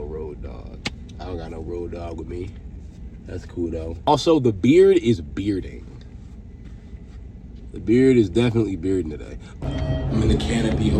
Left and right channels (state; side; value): identical; both; correlation 1.00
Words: road dog. I don't got no road dog with me. That's cool though. Also, the beard is bearding. The beard is definitely bearding today. I'm in the Canopy